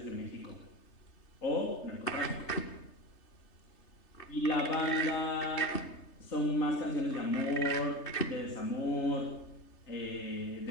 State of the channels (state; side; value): late; right; 3.3 ms